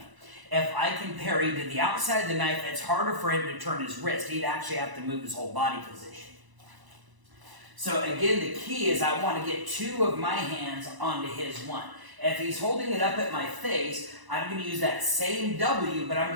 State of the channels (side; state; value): left; late; 1.0 ms